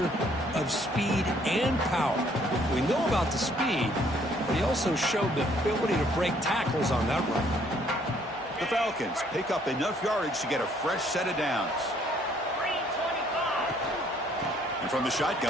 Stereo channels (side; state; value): both; normal; correlation 0.64